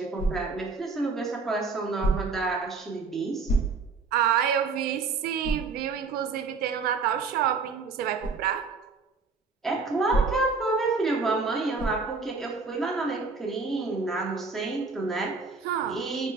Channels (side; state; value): left; quieter; 4.4 dB